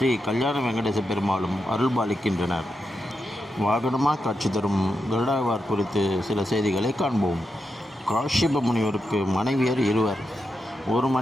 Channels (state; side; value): normal; both; correlation 0.86